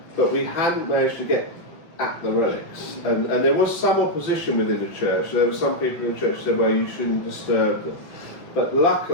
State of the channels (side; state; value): right; late; 5.6 ms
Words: but we hadn't managed to get at the relics. And there was some opposition within the church. There were some people in the church who said, well, you shouldn't disturb them. But